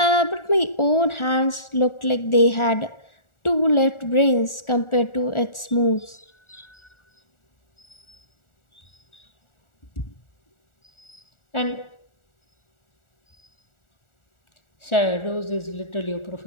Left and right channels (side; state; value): right; late; 1.4 ms